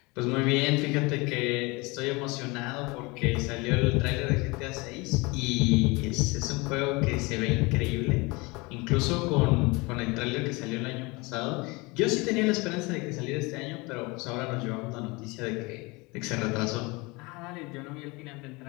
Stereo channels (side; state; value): right; quieter; 25.5 dB